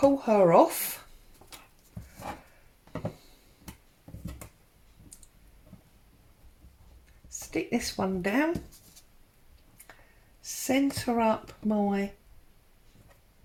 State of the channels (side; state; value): both; identical; correlation 1.00